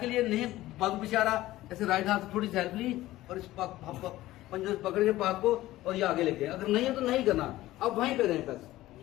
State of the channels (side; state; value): right; quieter; 16.2 dB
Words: लिए नहीं बाजू पीछे आ रहा, ऐसे राइट हाथ थोड़ी हेल्प ली और इस पंजों से पकड़ के पाक को और ये आगे लेके। अगर नहीं है तो नहीं करना, अब वहीं पे रहें बस।